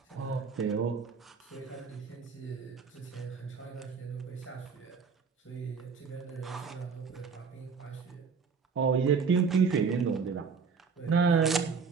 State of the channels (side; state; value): left; quieter; 5.5 dB